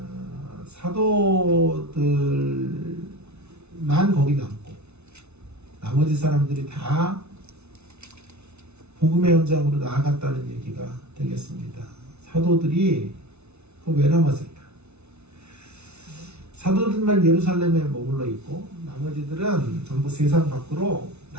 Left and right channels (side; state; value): left; late; 0.81 ms